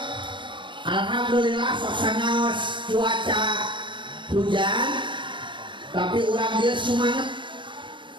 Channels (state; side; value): late; left; 0.23 ms